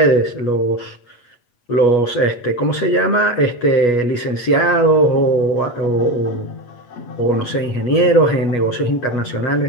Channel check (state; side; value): late; right; 8.3 ms